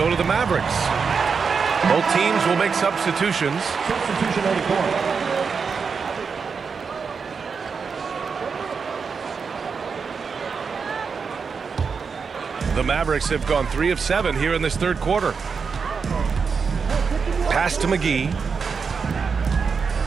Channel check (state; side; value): quieter; left; 5.6 dB